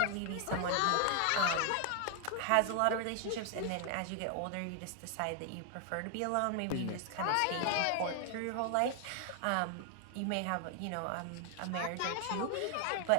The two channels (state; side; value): different; both; correlation 0.01